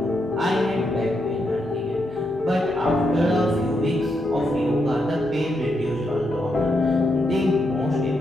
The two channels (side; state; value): both; normal; correlation 0.81